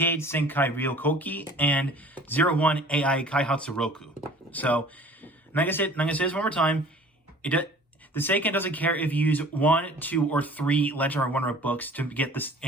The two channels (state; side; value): normal; both; correlation 0.47